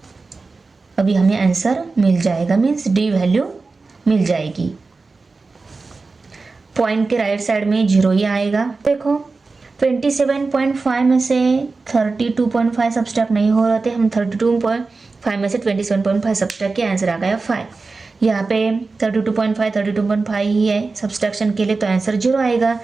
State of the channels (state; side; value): quieter; left; 4.0 dB